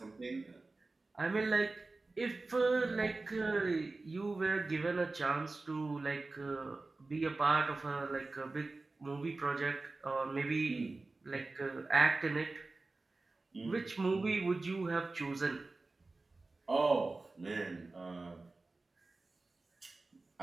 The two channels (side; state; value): left; quieter; 3.4 dB